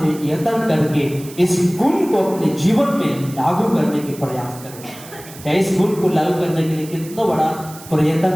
यत्न करके इस गुण को अपने जीवन में लागू करने के प्रयास करें। चाहे इस गुण को लागू करने के लिए कितना बड़ा प्रयत्न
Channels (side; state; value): right; noise; hiss, 18 dB below the sound